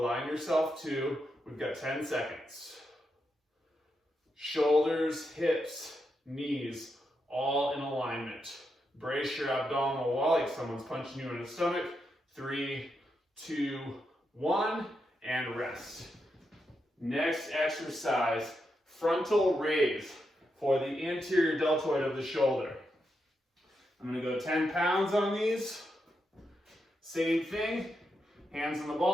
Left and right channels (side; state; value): both; normal; correlation 0.84